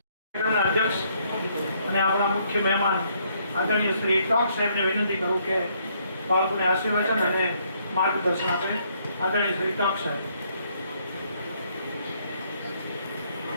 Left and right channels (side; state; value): both; inverted; correlation -0.69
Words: અધ્યક્ષ અને આપણા મુખ્ય મહેમાન આદરણીય શ્રી ટોક સાહેબને વિનંતી કરું કે બાળકોને આશીર્વચન અને માર્ગદર્શન આપે. આદરણીય શ્રી ટોક સાહેબ.